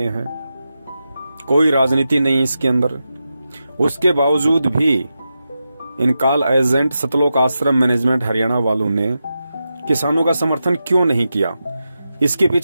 हैं, कोई राजनीति नहीं इसके अंदर। उसके बावजूद भी इन कॉल एजेंट सतलोक आश्रम मैनेजमेंट हरियाणा वालों ने किसानों का समर्थन क्यों नहीं किया? इसके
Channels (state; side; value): inverted; both; correlation -0.90